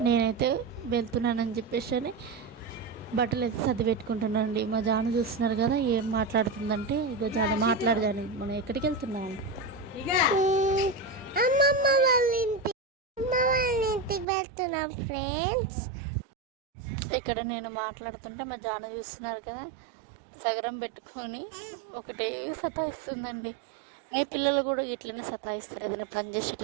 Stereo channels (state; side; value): drops out; left; at 14.2 s